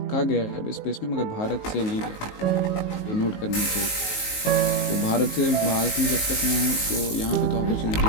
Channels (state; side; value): late; right; 19 ms